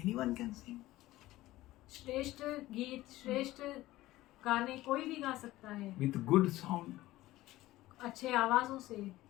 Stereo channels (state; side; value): quieter; right; 16.8 dB